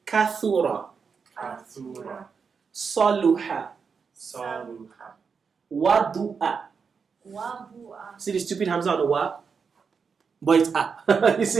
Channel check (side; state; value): left; quieter; 5.8 dB